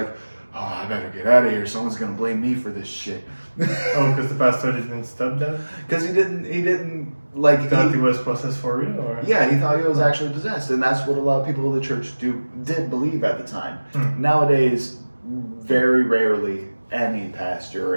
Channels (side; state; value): both; inverted; correlation -1.00